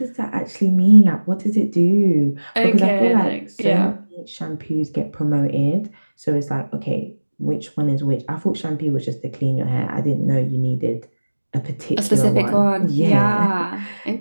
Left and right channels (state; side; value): inverted; both; correlation -1.00